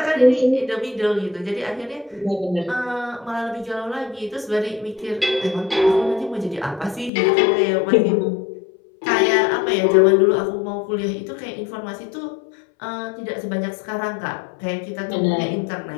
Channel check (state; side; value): drops out; right; at 7.1 s